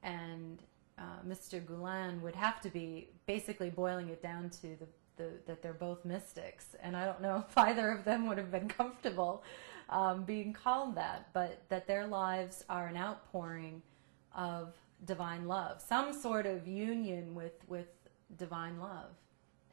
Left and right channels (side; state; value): left; silent; digital silence